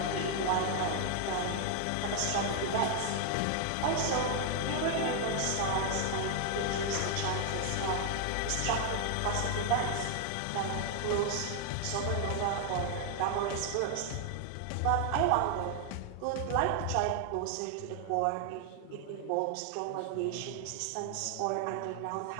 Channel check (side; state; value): both; different; correlation 0.00